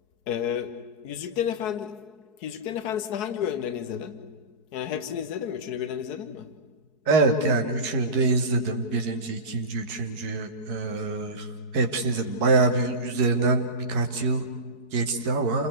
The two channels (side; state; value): right; late; 4.7 ms